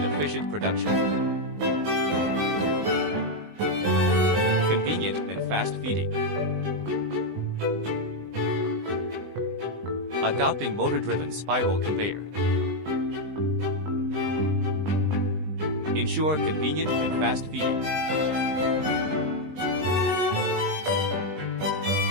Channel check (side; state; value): left; late; 20 ms